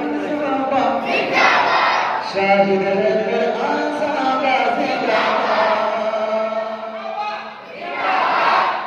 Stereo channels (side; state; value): both; identical; correlation 1.00